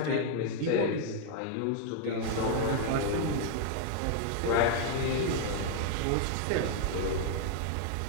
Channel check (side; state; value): both; different; correlation 0.00